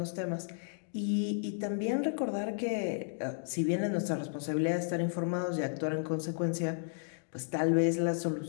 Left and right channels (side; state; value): right; silent; digital silence